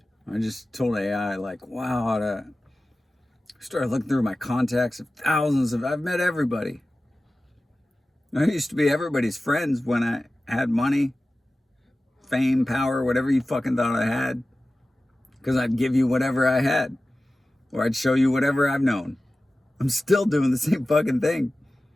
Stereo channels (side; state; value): both; normal; correlation 0.96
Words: I just told AI, like, wow, I started looking through my contacts of thousands of, I've met everybody. I used to be everybody's friends when I had money, fame, power, whatever you fucking thought I had. Because I'd give you whatever I had. Or I'd show you whatever I've known. I'm still doing the same fucking thing.